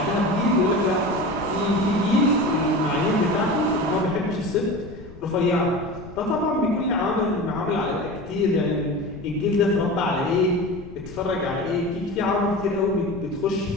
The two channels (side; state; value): left; noise; rumble, 17 dB below the sound